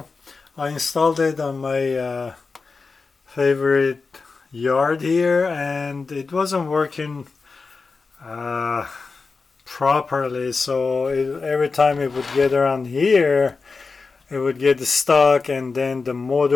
I installed it on my favorite yard here and it wasn't working uh, properly, so every time it would get around here it would get stuck, and then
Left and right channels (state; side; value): quieter; right; 4.4 dB